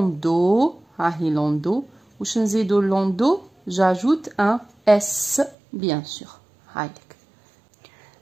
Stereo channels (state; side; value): drops out; left; at 5.6 s